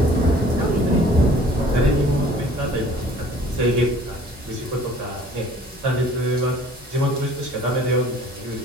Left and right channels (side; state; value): both; normal; correlation 0.52